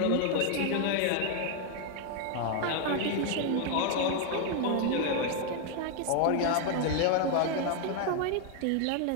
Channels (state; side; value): different; both; correlation 0.00